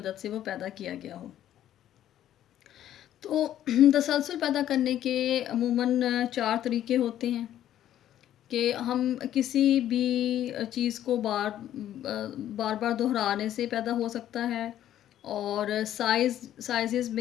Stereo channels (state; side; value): quieter; right; 11.7 dB